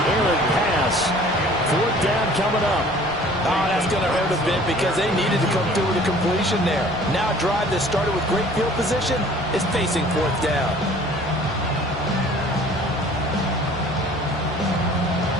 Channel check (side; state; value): both; normal; correlation 0.51